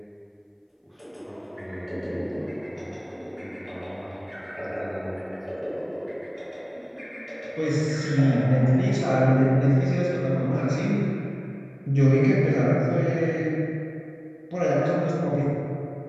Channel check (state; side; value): identical; both; correlation 1.00